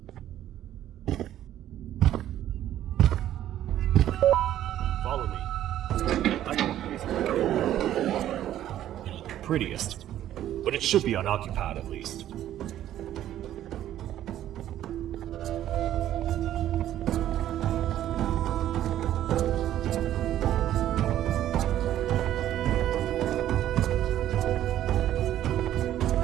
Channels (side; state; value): left; quieter; 12.1 dB